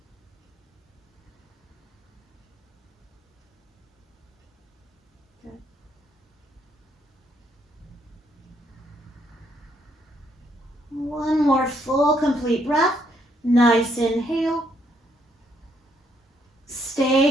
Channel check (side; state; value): both; normal; correlation 0.72